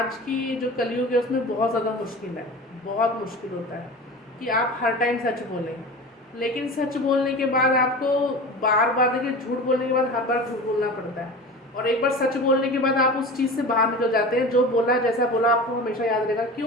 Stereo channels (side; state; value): both; normal; correlation 0.33